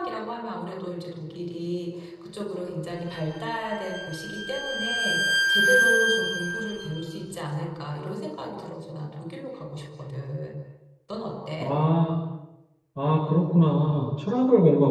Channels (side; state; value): both; identical; correlation 1.00